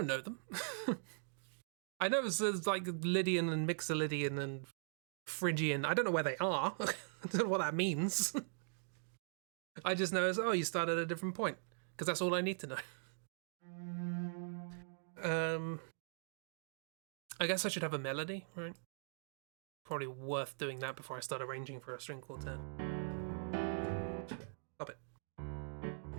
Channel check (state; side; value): silent; left; digital silence